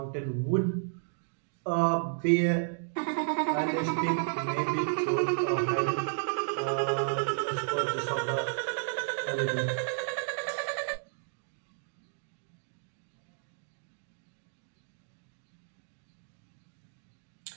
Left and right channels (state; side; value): silent; left; digital silence